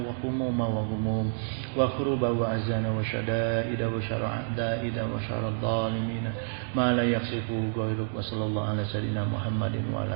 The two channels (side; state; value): left; silent; digital silence